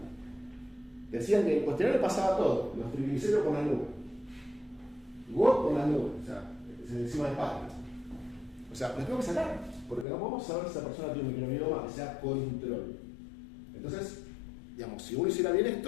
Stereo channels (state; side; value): drops out; right; at 10.1 s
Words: Decían que el cuestionario pasaba todo, los triglicéridos por las nubes, GOT por las nubes, o sea, encima de páginas. O sea, los tengo que sacar, porque no podemos saber si esa persona tiene un microbioma que sea control. Entonces, digamos, si uno hiciera bien